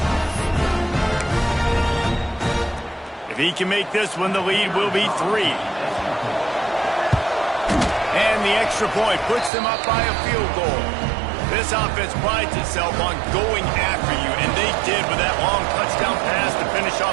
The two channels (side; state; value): left; drops out; at 9.5 s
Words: If he can make this one, the lead will be 3. And the extra point puts them up by a field goal. This offense prides itself on going after you, and they did with that long touchdown pass to finish off